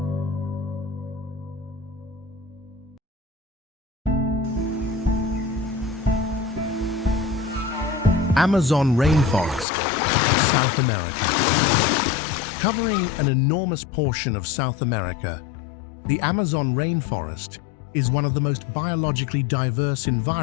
Amazon rainforest, South America. Covering an enormous portion of South America, the Amazon rainforest is one of the most biologically diverse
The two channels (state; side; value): drops out; right; at 9.7 s